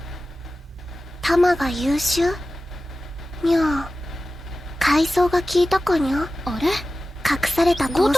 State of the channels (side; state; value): both; normal; correlation 0.95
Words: 弾が優秀にゃー、階層が効いたかにゃ。あれ、隠された高